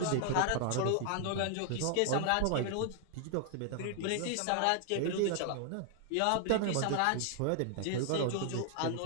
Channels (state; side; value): different; both; correlation 0.00